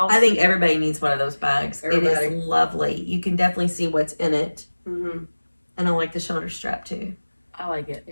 I think everybody needs one of those bags. It Everybody. is lovely. You can definitely see what's in it. Mm-hmm. And I like the shoulder strap too. I like it.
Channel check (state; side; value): inverted; both; correlation -1.00